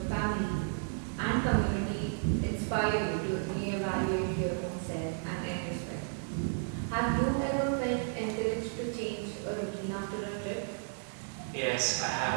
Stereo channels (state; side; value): silent; left; digital silence